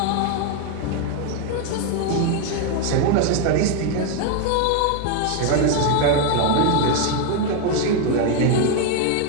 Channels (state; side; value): different; both; correlation 0.01